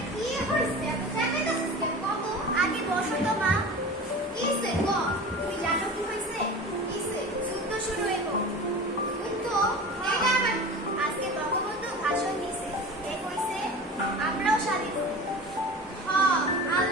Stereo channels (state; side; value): normal; both; correlation 0.35